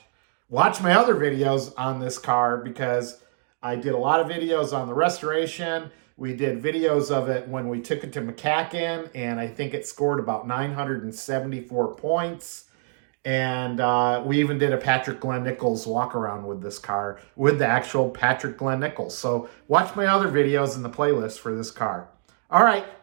Watch my other videos on this car, because I did a lot of videos on the restoration. We did videos of it when we took it to MCACN, and I think it scored about 974 points. And we even did a Patrick Glenn Nichols walk around with this car, with the actual Patrick Glenn Nichols. So watch my other videos in the playlist for this car. All right,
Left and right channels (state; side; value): silent; left; digital silence